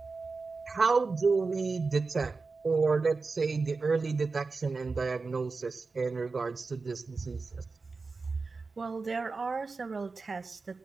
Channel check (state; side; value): quieter; left; 4.2 dB